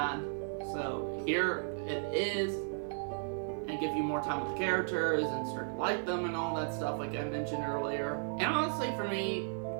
So, here it is. And give you more time with the characters and start to like them and all that stuff, like I mentioned earlier. And honestly, for me,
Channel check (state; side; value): silent; left; digital silence